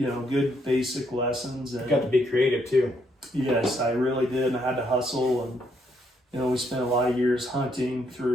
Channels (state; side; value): normal; both; correlation 0.73